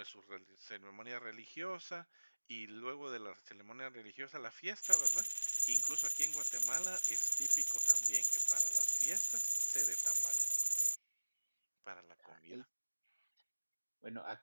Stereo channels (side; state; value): both; inverted; correlation -1.00